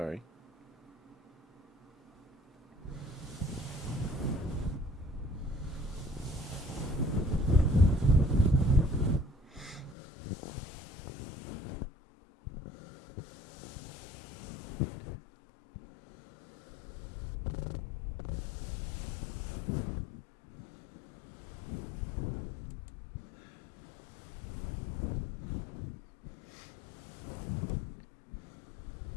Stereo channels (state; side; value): drops out; right; at 10.0 s